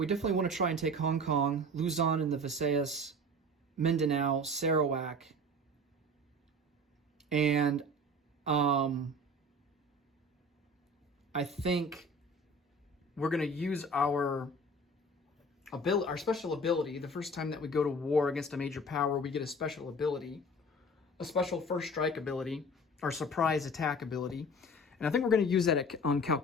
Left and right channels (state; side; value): normal; both; correlation 0.40